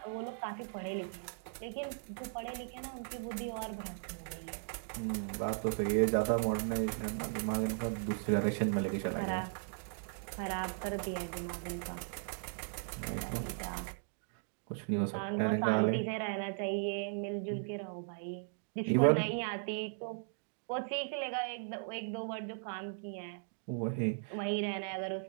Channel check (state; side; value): silent; left; digital silence